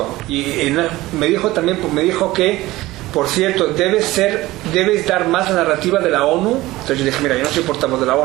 y me dijo que, por cierto, debes dar más la narrativa de la ONU. Entonces yo dije, mira, yo no soy portavoz de la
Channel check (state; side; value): quieter; left; 18.2 dB